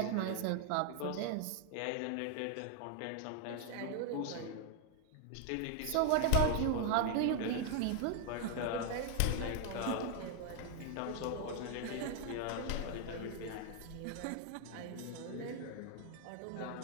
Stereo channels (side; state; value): both; different; correlation 0.00